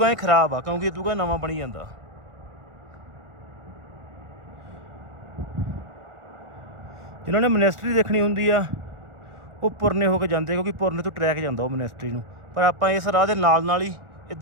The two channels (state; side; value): late; left; 1.4 ms